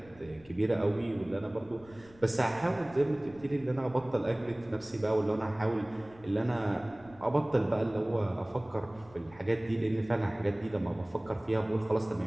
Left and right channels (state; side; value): noise; left; rumble, 24 dB below the sound